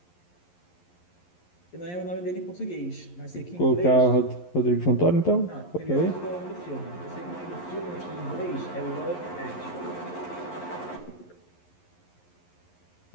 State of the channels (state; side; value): late; right; 11 ms